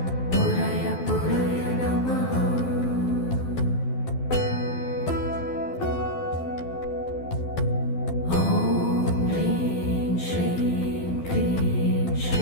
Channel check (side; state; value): right; late; 12 ms